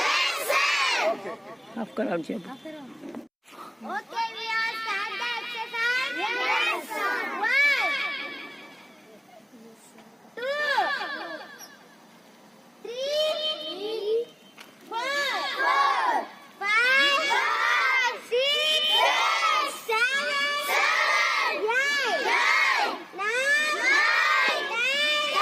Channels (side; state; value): both; identical; correlation 1.00